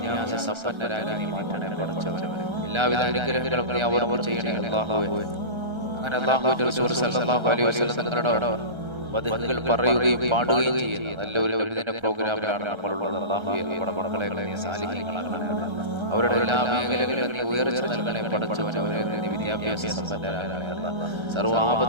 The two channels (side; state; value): left; late; 1.3 ms